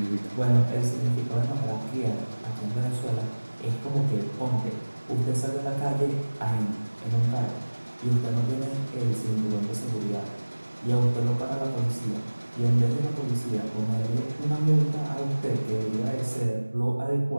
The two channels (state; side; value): inverted; both; correlation -1.00